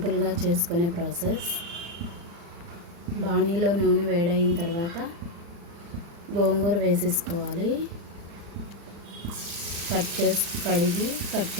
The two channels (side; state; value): left; late; 35 ms